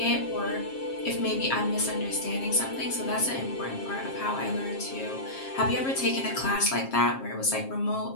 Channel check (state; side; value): late; right; 7.5 ms